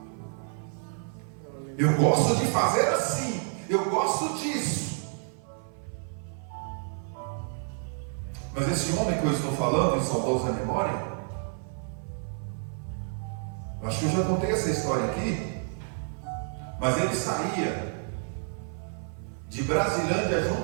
Eu gosto de fazer assim, eu gosto disso. Mas esse homem que eu estou falando, em saudosa memória, acho que eu já contei essa história aqui, mas ele saía de Brasilândia a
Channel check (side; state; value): left; silent; 56 dB below the other